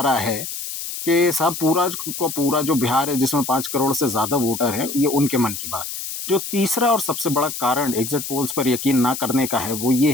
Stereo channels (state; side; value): noise; left; hiss, 7 dB below the sound